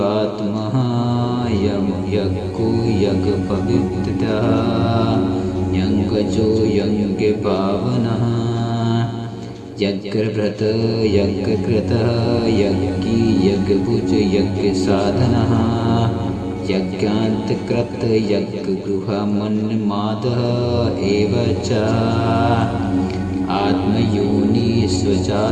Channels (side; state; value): both; identical; correlation 1.00